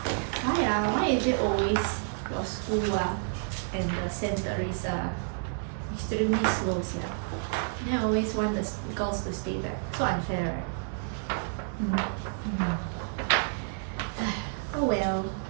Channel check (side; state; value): left; silent; 58 dB below the other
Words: Why is it always your school and the centers extremely slow, Then I always want the girls to stay back. So unfair, right? Oh well.